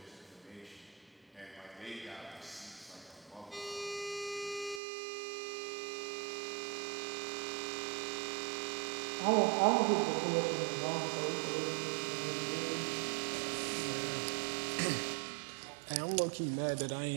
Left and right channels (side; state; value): left; drops out; at 4.8 s